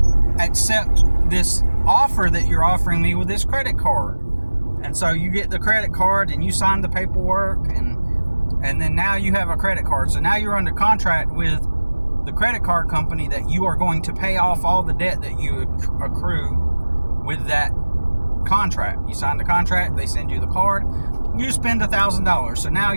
accept this offer that you're offering me with this credit card. And so you get the credit card and you sign the paperwork, and then now you have a credit card. So now you're under contract with the credit card company that you are going to pay off all the debt that you accrue with that contract. You sign the contract, they send you the card, you spend $1,000. So now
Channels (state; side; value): inverted; both; correlation -1.00